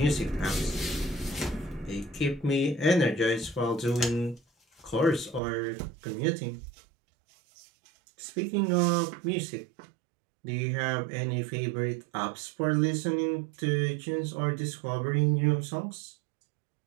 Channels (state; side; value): drops out; left; at 5.4 s